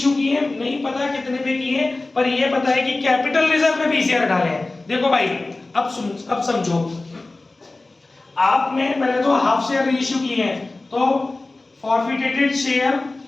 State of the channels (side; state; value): right; quieter; 3.1 dB